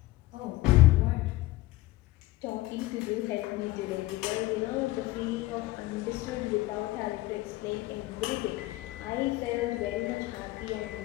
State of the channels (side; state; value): right; quieter; 18.5 dB